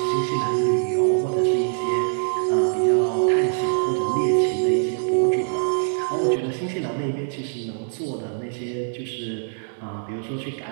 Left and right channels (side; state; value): left; silent; digital silence